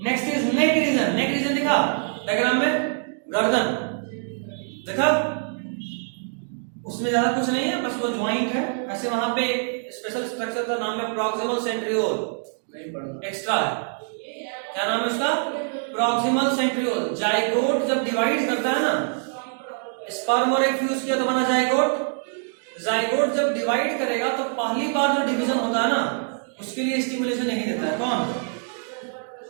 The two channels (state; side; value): silent; left; 62 dB below the other